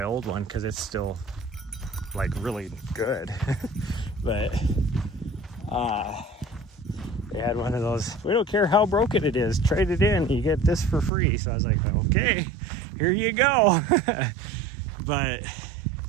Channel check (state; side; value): drops out; left; at 11.1 s